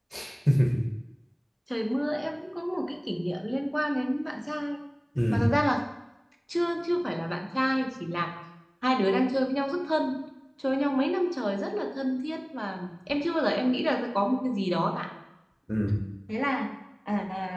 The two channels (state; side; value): identical; both; correlation 1.00